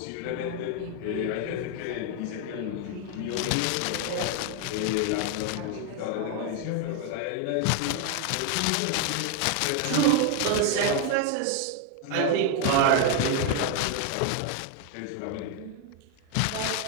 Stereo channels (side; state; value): both; different; correlation 0.01